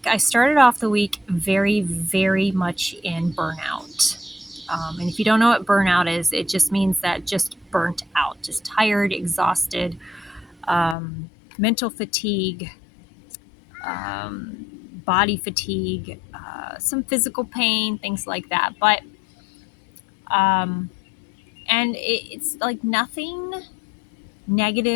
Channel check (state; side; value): drops out; right; at 11.0 s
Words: I started off the week very, very much in burnout. And if you don't know what burnout is, it just means that just burnt out, just tired, exhausted, mental fatigue, body fatigue, some physical pain, things like that. But, and it's like nothing